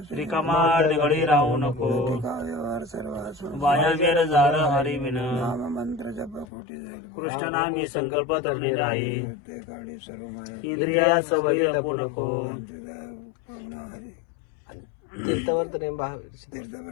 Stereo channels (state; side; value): drops out; right; at 6.5 s